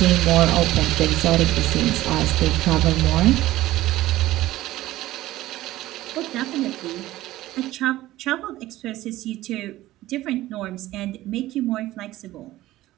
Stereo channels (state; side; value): quieter; left; 16.0 dB